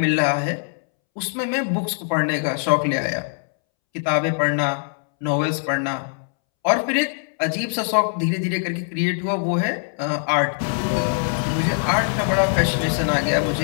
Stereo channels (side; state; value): right; silent; 64 dB below the other